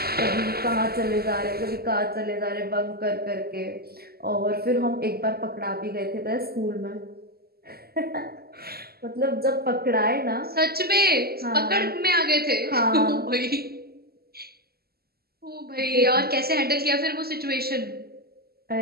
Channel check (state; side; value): late; left; 0.45 ms